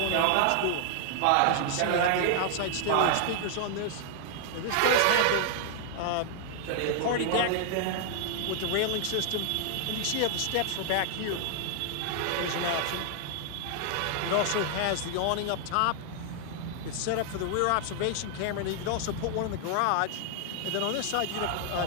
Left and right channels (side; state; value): both; different; correlation 0.00